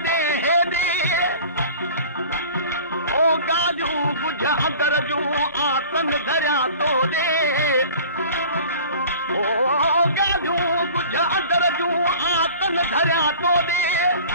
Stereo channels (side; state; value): both; inverted; correlation -0.43